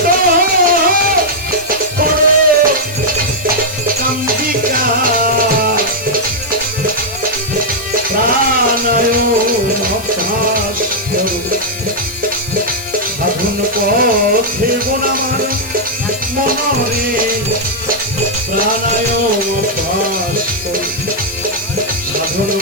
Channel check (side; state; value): left; noise; hiss, 14 dB below the sound